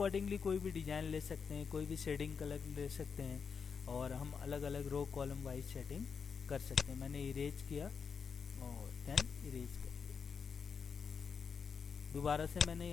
कोई भी डिजाइन ले सकते हैं, कोई भी शेडिंग कलर ले सकते हैं, और हम अलग अलग रो कॉलम वाइज सेटिंग कर सकते हैं। मैंने इरेज किया और देन इरेज कर दिया। दोबारा से मैंने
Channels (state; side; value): quieter; right; 6.0 dB